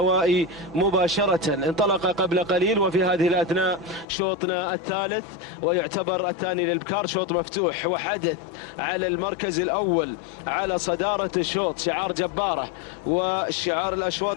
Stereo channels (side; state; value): right; drops out; at 4.0 s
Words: مباشرة. انطلق قبل قليل وفي هذه الأثناء شوطنا الثالث، ويعتبر الثاني للبكار شوط مفتوح وحدث على المركز الأول على صدارة الشوط شعار جبارة. وشعار